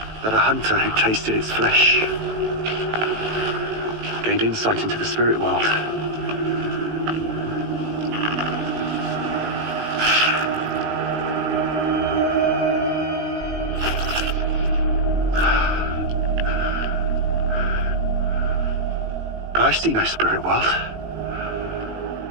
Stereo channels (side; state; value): left; late; 18 ms